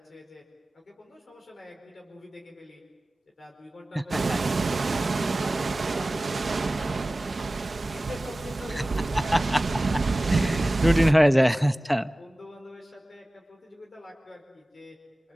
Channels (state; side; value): normal; both; correlation 0.97